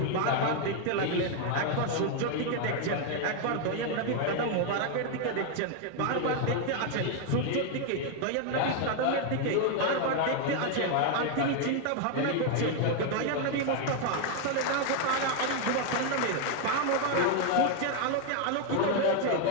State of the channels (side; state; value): both; different; correlation 0.01